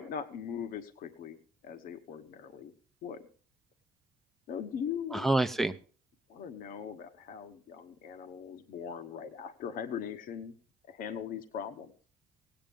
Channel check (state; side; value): normal; both; correlation 0.65